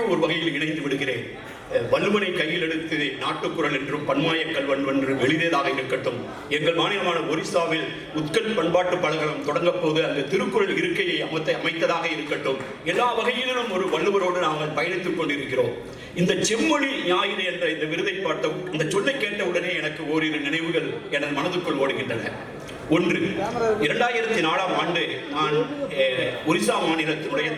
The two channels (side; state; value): both; identical; correlation 1.00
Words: ஒரு வகையில் இணைந்து விடுகிறேன். வள்ளுவனை கையில் எடுத்து நாட்டுக்குறள் என்றும் பன்மாய கல்வன் என்றும் எழுதியதாக இருக்கட்டும், எங்கள் மாநிலமான ஒரிசாவில் உத்கல் பண்பாட்டு பலகலம் தொடங்கப் போது அந்த திருக்குறள் இருக்கையை அமைத்ததாக இருக்கட்டும், எல்லா வகையிலும் ஒரு வள்ளுவரோடு நாங்கள் பயணித்துக் கொண்டிருக்கிறோம். இந்த செம்மொழி ஞாயிறு என்ற இந்த விருதை பார்த்த இந்த சொல்லை கேட்ட உடனே எனக்கு ஓரிரு நினைவுகள் எனது மனதுக்குள் ஓடுகின்றன. ஒன்று, 2004ஆம் ஆண்டு நான் ஒரிசா மாநிலத்தினுடைய